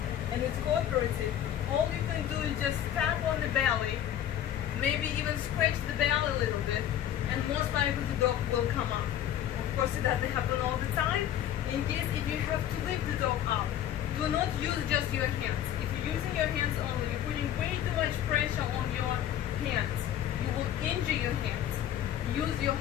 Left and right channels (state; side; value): quieter; right; 11.0 dB